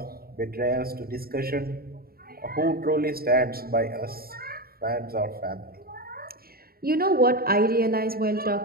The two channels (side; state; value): left; late; 0.44 ms